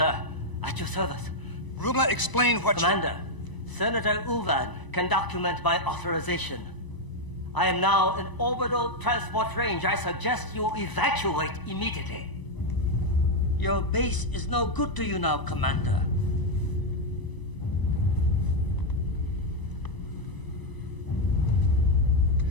At your service. Rumla, explain what Commander, Senator Uvan can document my authorization. I am now in orbital transport range. I suggest you evacuate immediately. Your base is no good to you now, Commander.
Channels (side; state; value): right; late; 1.0 ms